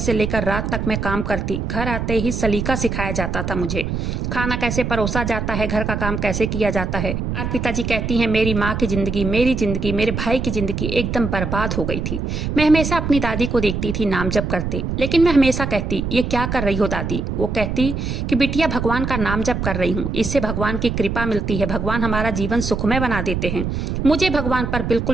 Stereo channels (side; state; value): right; noise; rumble, 3 dB below the sound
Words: लेकर रात तक मैं काम करती। घर आते ही सलीका सिखाया जाता था मुझे, खाना कैसे परोसा जाता है, घर का काम कैसे किया जाता है। अर्पिता जी कहती हैं, मेरी माँ की जिंदगी, मेरी जिंदगी, मेरे भाई की जिंदगी एकदम बर्बाद हो गई थी। मैं हमेशा अपनी दादी को देखती थी नाम जप करते, लेकिन मैं हमेशा कहती, ये क्या कर रही हो दादी? वो कहती कि बिटिया भगवान का नाम जप कर रही हूँ, इससे भगवान की कृपा मिलती है, भगवान हमारा जीवन सुखमय बना देते हैं। मुझे भगवान पर